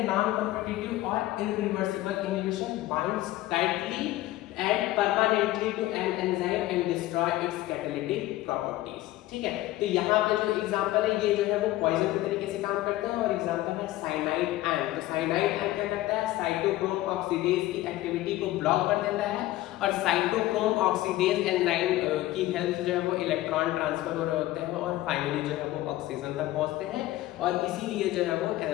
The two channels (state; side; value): quieter; right; 16.1 dB